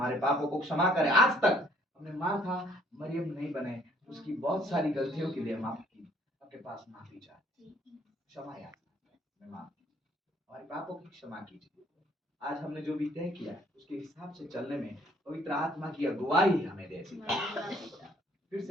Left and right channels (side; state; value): both; normal; correlation 0.62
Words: पापों को क्षमा करें। आज तक हमने मार्था मरियम नहीं बने, उसकी बहुत सारी गलतियों के लिए हम आपके पास माफी चाहते, क्षमा याचना, हमारे पापों की क्षमा कीजिए। आज हमने जो भी तय किया उसके हिसाब से चलने में पवित्र आत्मा की अगुवाई हमें दे। फिर